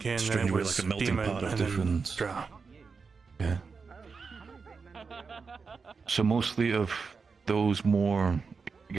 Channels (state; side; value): quieter; left; 5.0 dB